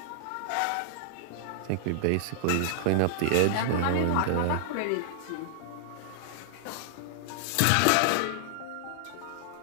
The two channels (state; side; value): different; both; correlation -0.01